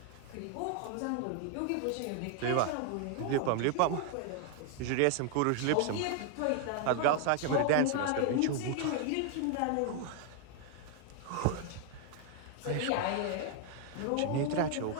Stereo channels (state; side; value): different; both; correlation 0.00